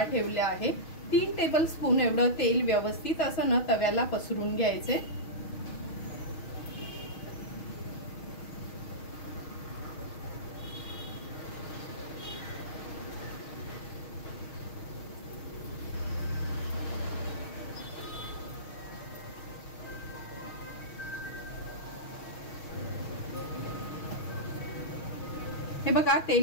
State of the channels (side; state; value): right; late; 6.3 ms